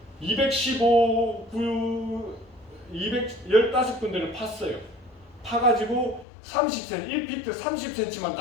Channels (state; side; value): drops out; right; at 6.2 s